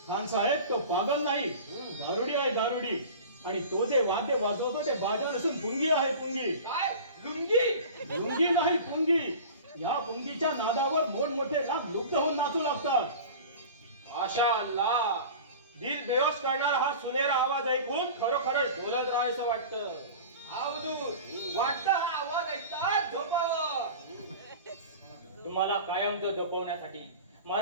खान साहेब, तो पागल नाही, गारुडी आहे गारुडी. आणि तो जे वाद्य वाजवतो ते बाजा नसून पुंगी आहे पुंगी. काय लुंगी? पुंगी नाही पुंगी. या पुंगीच्या नादावर मोठमोठे लाख लुप्त होऊन नाचू लागतात. माशा अल्लाह, दिल बेहोश करणारा हा सुनेरा आवाज ऐकून खरोखरच डोलत राहायचं वाटतं. वाटतं हा आवाज ऐकतात झोपावं. तुम्हाला कायमचं झोपवण्यासाठी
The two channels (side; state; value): both; inverted; correlation -0.37